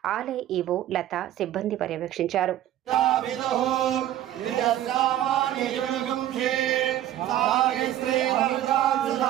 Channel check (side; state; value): left; quieter; 12.6 dB